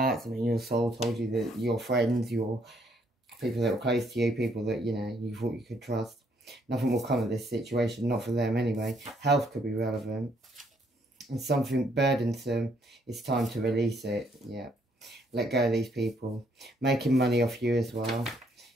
something in your soul told you that your friends, your people that were close to you, people that, you know, you thought you could trust. Nothing will come of this situation, not for them anyway. Health could be relevant. And something burdensome, it's time to release it. Yeah. Let go of these people. Making money off you as well.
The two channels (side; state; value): both; normal; correlation 0.69